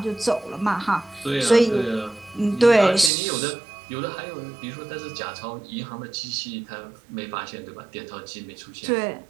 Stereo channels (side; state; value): left; drops out; at 3.1 s